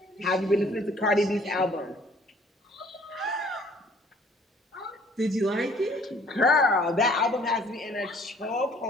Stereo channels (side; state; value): both; normal; correlation 0.57